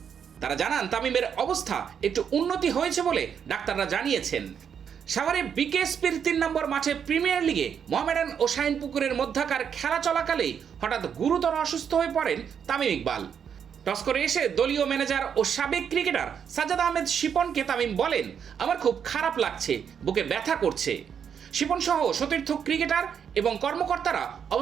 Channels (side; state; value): left; quieter; 7.7 dB